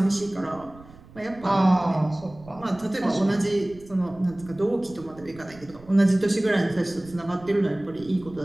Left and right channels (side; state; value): right; noise; rumble, 21 dB below the sound